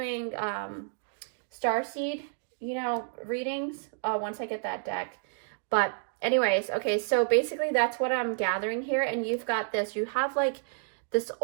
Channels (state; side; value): silent; left; digital silence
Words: starseed, you know, readings once I get that deck. But anyways, okay, so basically that's what I'm gathering here. And you've got this, you have like this